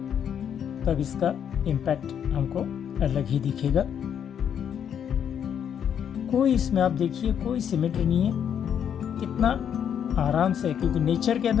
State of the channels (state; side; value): quieter; right; 8.6 dB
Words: तब इसका इम्पैक्ट हमको अलग ही दिखेगा। कोई इसमें आप देखिए कोई सिमेट्री नहीं है, कितना आराम से, क्योंकि नेचर के